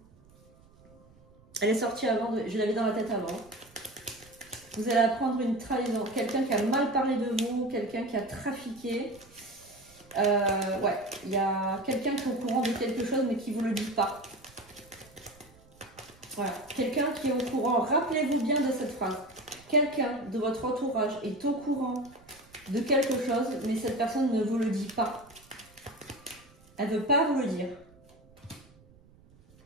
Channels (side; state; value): right; noise; rumble, 27 dB below the sound